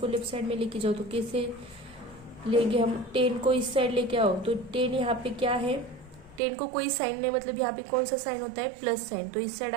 लेफ्ट साइड में लेके जाओ, तो कैसे लेंगे हम? 10 को इस साइड लेके आओ, तो 10 यहाँ पे क्या है, 10 को कोई साइन नहीं, मतलब यहाँ पे कौन सा साइन होता है, प्लस साइन, तो इस साइड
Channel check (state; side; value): drops out; left; at 6.4 s